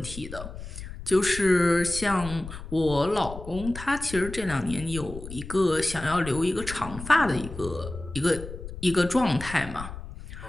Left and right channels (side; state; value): left; noise; rumble, 11 dB below the sound